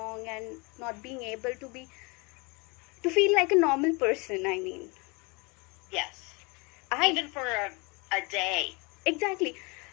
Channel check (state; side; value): quieter; right; 29.2 dB